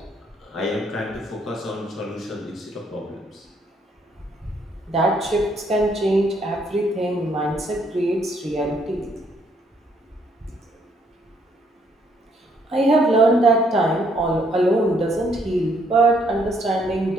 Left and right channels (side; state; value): both; normal; correlation 0.69